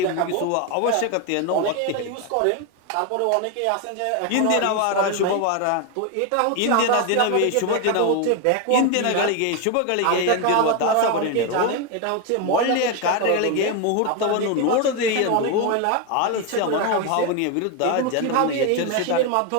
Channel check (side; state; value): both; different; correlation 0.02